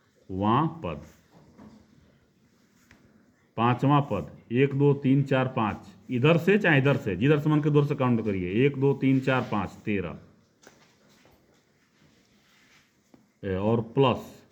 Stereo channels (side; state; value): both; identical; correlation 1.00